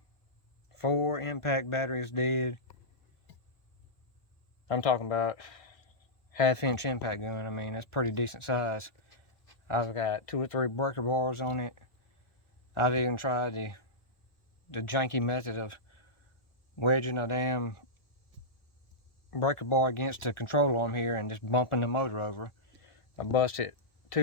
4 impact batteries dead. I'm talking about 1/2-inch impact gun. I mean, that's pretty decent size. I've got 2 or 3 breaker bars on it. I've even tried the janky method of wedging a damn breaker bar against the control arm here and just bumping the motor over. I busted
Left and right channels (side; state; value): right; late; 1.4 ms